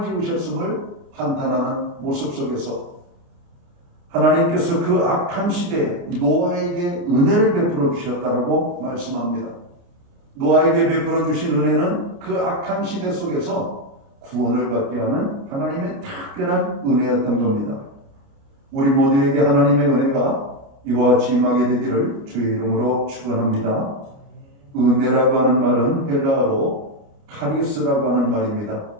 지으셨음을 한탄하는 모습 속에서 하나님께서 그 악한 시대에 노아에게 은혜를 베풀어 주셨다라고 말씀합니다. 노아에게 베풀어 주신 은혜는 그 악한 시대 속에서 구원을 받게 하는 하나님의 특별한 은혜였던 겁니다. 우리 모두에게 하나님의 은혜가 이와 같이 임하게 되기를 주의 이름으로 축원합니다. 은혜라고 하는 말은 헬라어로 카리스라고 하는 말입니다.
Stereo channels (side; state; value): left; late; 29 ms